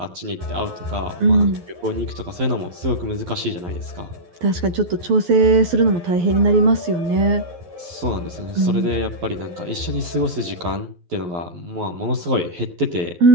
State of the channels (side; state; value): left; late; 12 ms